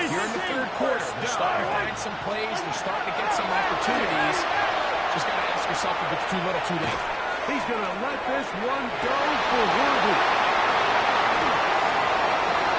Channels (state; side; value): identical; both; correlation 1.00